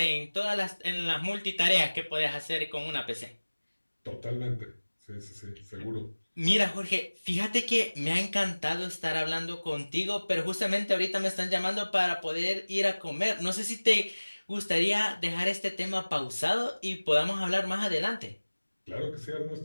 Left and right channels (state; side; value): inverted; both; correlation -1.00